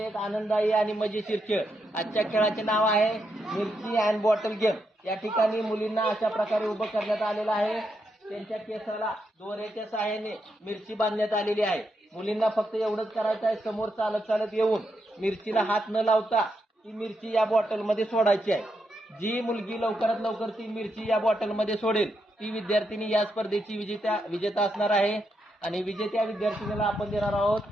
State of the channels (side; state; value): both; normal; correlation 0.82